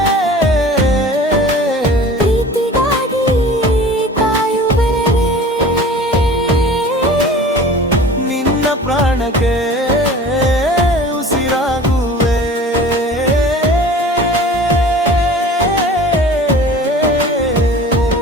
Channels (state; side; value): normal; both; correlation 0.42